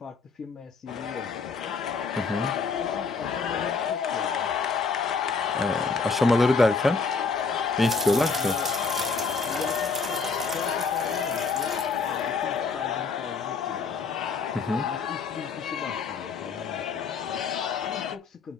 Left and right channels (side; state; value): right; quieter; 4.7 dB